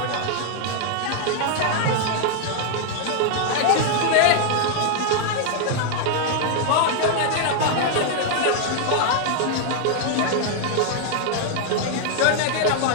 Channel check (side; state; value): both; different; correlation 0.00